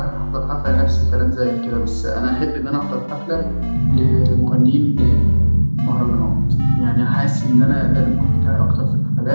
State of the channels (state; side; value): inverted; both; correlation -1.00